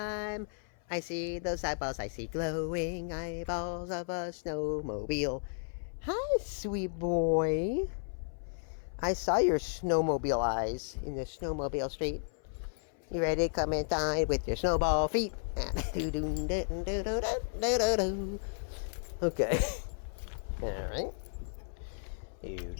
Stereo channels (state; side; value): silent; right; 55 dB below the other